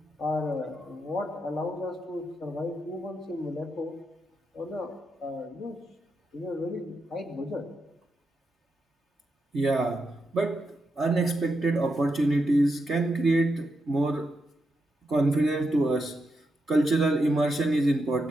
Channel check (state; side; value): normal; both; correlation 0.85